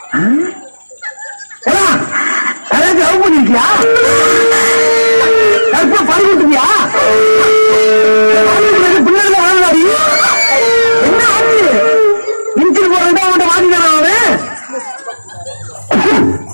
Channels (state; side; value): inverted; both; correlation -1.00